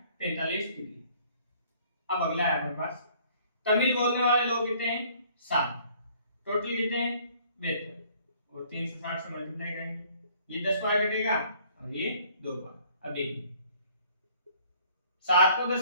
45 डिग्री। अब अगला है अपने पास तमिल बोलने वाले लोग कितने हैं 7 टोटल कितने हैं 72 और 360 से मल्टीप्लाई करेंगे ये 10 बार कटेगा और ये 2 बार। अब देखिए 7 को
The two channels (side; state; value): both; inverted; correlation -0.58